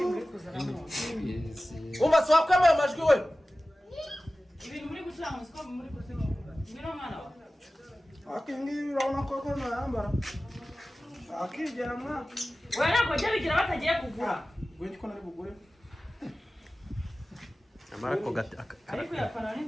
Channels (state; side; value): normal; both; correlation 0.96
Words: Umaswa kwame amajwi we. Ibintu muri gucanga musiko muri kusenga. Ngiro mwana wa. Akingi urabona ko ko nayambara. Akigera mwa. Wewe nako je bigira batagiye kugura. Gwe ko nari bugure. amara ko gati Ariko yapana